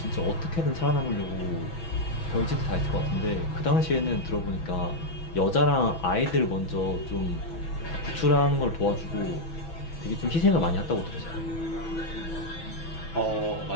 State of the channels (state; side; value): late; right; 6.1 ms